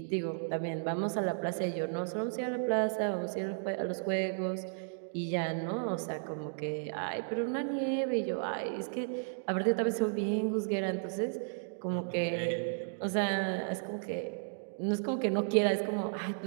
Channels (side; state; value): left; silent; digital silence